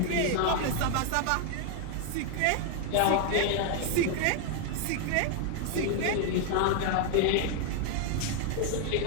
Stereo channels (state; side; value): different; both; correlation 0.00